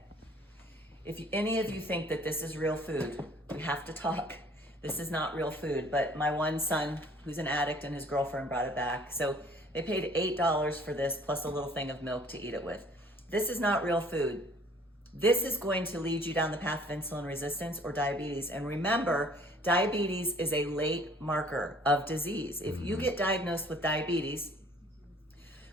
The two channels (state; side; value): normal; both; correlation 0.55